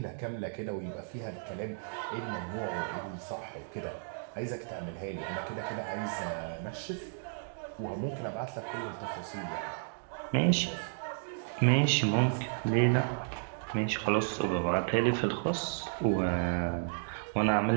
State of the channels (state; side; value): silent; left; digital silence